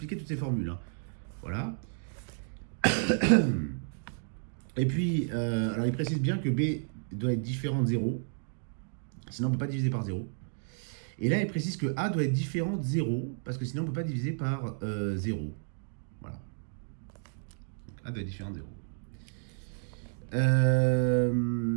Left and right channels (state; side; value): silent; left; digital silence